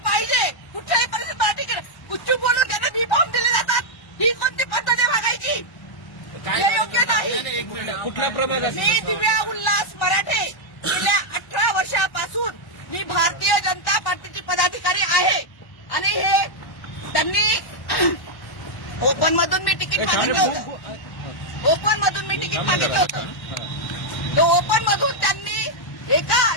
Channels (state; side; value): late; right; 1.1 ms